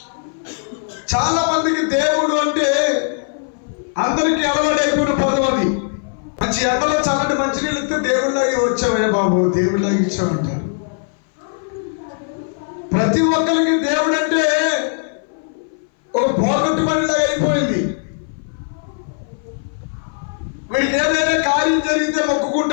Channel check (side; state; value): right; silent; 61 dB below the other